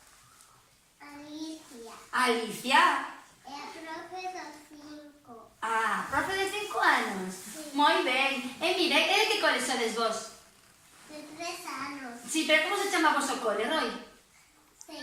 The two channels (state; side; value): identical; both; correlation 1.00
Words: Alicia. Alicia? E a profe dos 5. Ah, profe de 5 anos? Sí. Moi ben. E mira, e de que cole sodes vos? De 3 anos. Sí, pero como se chama vos o cole, Roy?